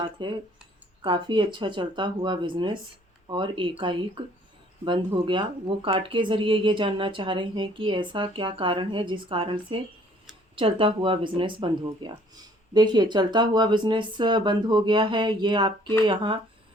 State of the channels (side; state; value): both; normal; correlation 0.59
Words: है, काफ़ी अच्छा चलता हुआ बिजनेस और एकाएक बंद हो गया। वो कार्ड के ज़रिए ये जानना चाह रहे हैं कि ऐसा क्या कारण है जिस कारण से चलता हुआ बिजनेस बंद हो गया। देखिए, चलता हुआ बिजनेस बंद हो गया है, ये आपके यहाँ